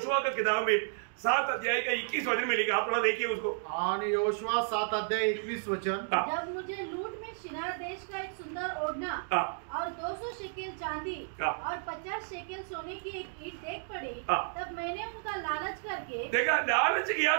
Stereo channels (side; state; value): left; silent; digital silence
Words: की किताब में 7 अध्याय का 21 वचन में लिखा, आप थोड़ा देखिए उसको। आणि योशुआ 7 अध्याय 21 वचन। जब मुझे लूट में शिनार देश का एक सुंदर ओढ़ना और 200 शेकेल चांदी और 50 शेकेल सोने की एक ईंट देख पड़ी, तब मैंने उनका लालच करके देखा, लालच किया